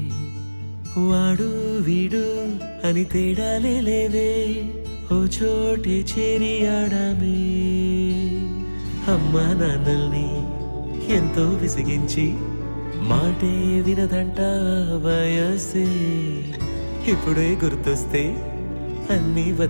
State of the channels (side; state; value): both; inverted; correlation -1.00